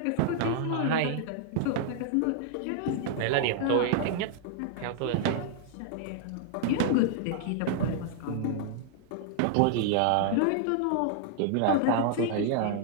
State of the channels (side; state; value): both; different; correlation 0.00